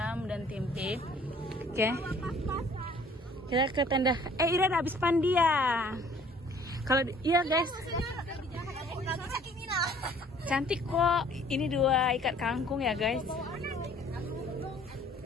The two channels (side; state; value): both; normal; correlation 0.55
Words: dan tempe. Oke. Kita ke tenda. Ira udah habis pandia. Kalau iya guys. Cantik kok. Ini 2 ikat kangkung ya guys.